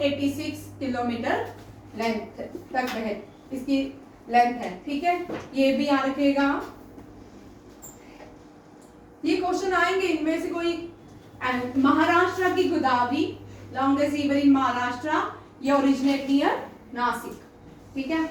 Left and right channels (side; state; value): both; identical; correlation 1.00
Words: किलोमीटर लेंथ तक बह, इसकी लेंथ है, ठीक है। ये भी याद रखिएगा। ये क्वेश्चन आएंगे, इनमें से कोई। महाराष्ट्र की Godavari, longest river in Maharashtra, ये ओरिजिनेट नियर नासिक, ठीक है।